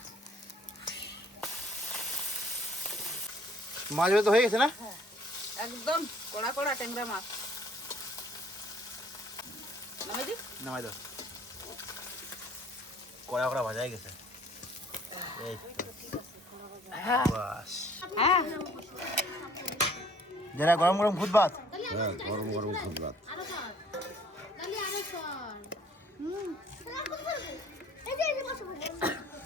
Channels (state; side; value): normal; both; correlation 0.57